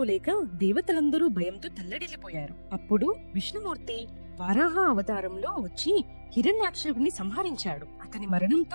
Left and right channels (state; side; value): inverted; both; correlation -1.00